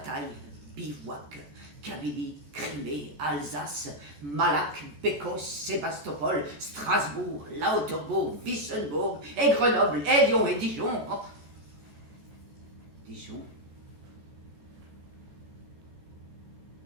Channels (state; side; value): late; left; 14 ms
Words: bivouac, Kabylie, Crimée, Alsace, Malac, Bécos, Sébastopol, Strasbourg, Lauterbourg, Wissembourg, et Grenoble, et Lyon, et Dijon. Oh. Dijon.